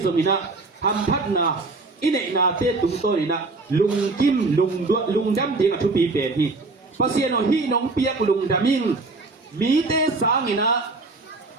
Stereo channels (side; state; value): left; quieter; 3.5 dB